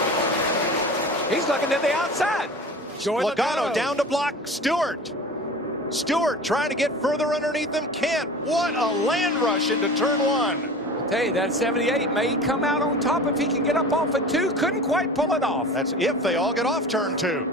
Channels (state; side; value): normal; both; correlation 0.36